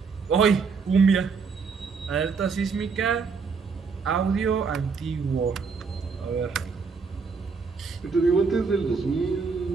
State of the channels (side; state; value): left; quieter; 5.1 dB